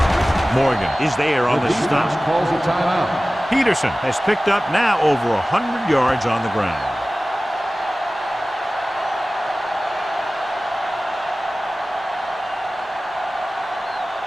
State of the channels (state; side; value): normal; both; correlation 0.97